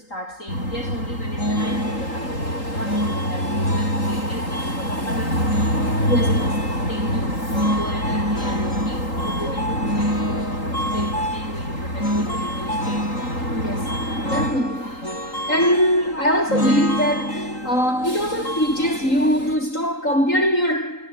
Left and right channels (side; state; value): right; late; 3.8 ms